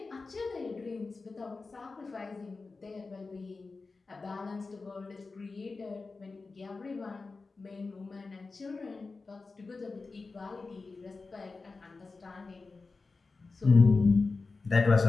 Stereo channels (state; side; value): quieter; right; 4.0 dB